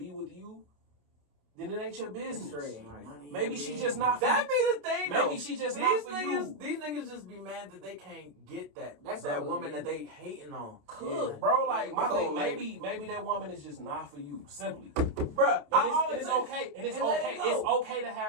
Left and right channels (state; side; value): late; left; 27 ms